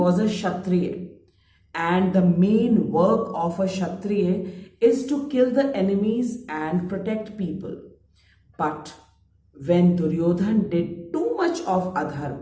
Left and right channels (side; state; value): both; identical; correlation 1.00